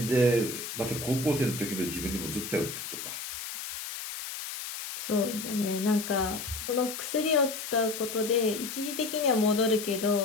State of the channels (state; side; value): noise; left; hiss, 7 dB below the sound